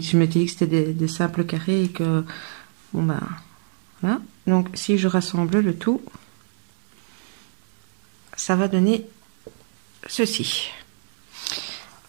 dit que c'était des simples carrés et que, bon, bah, voilà. Donc, si je rassemble le tout, ça va donner ceci.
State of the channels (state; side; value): silent; left; digital silence